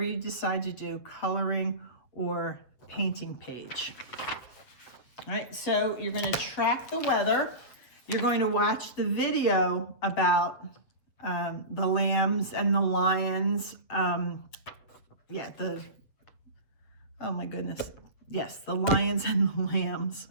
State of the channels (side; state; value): right; late; 7.7 ms